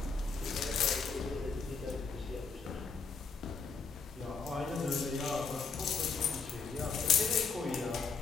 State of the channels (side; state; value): right; quieter; 4.9 dB